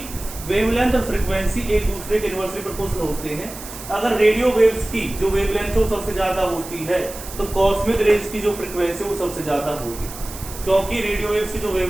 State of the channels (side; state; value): right; noise; hiss, 13 dB below the sound